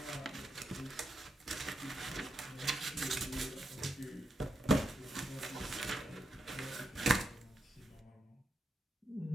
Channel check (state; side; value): normal; both; correlation 0.85